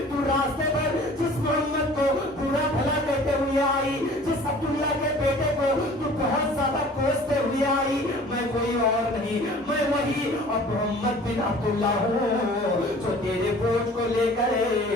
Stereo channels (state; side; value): normal; both; correlation 0.48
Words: تو راستے بھر جس محمد کو برا بھلا کہتے ہوئے آئی, جس عبداللہ کے بیٹے کو تو بہت زیادہ کوستے ہوئے آئی, میں کوئی اور نہیں, میں وہی اب محمد بن عبداللہ ہوں جو تیرے بوجھ کو لے کر